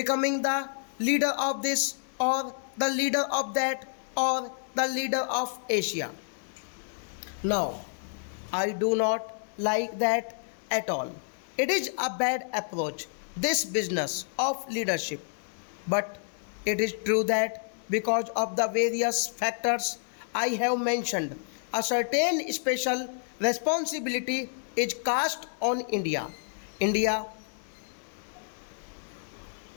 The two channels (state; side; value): silent; right; digital silence